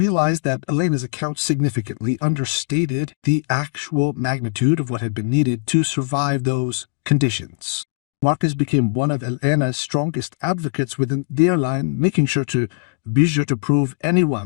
that Elena's account significantly understated the actual magnitude of what had been needed to survive those conditions. Marcus became one of Elena's strongest advocates within the airline, making sure to prove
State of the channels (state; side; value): silent; right; digital silence